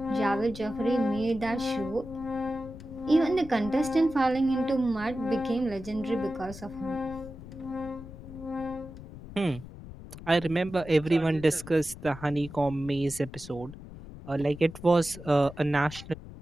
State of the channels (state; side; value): noise; left; rumble, 14 dB below the sound